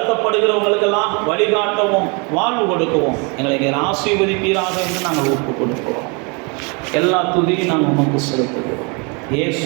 வழிகாட்டவும், வாழ்வு கொடுக்கவும் எங்களை ஆசீர்வதிப்பீராக என்று நாங்கள் ஒப்பு கொடுக்கிறோம். எல்லா துதியும் நாங்கள் உமக்கு செலுத்துகிறோம்.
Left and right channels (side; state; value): left; quieter; 31.9 dB